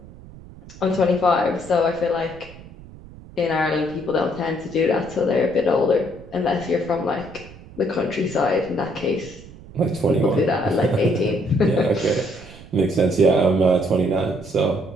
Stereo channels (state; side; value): noise; right; rumble, 19 dB below the sound